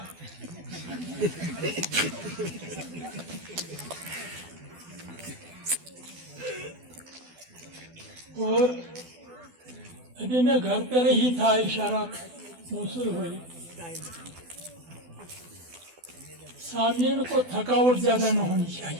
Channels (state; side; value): late; left; 12 ms